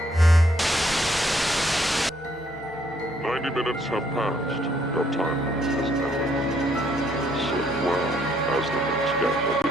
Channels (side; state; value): both; normal; correlation 0.69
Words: 90 minutes have passed. Your time limit has ended. Sit well, as the next game will